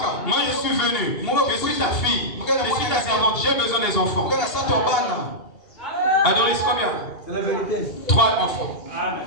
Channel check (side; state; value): right; late; 2.8 ms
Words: Moi, je suis venu. Je suis ta fille. Je suis ta servante. J'ai besoin des enfants. Adoris, combien? C'est la vérité. 3 enfants.